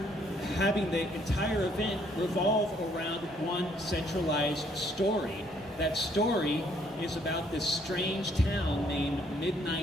having the entire event revolve around one centralized story. That story is about this strange town named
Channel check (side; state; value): both; normal; correlation 0.66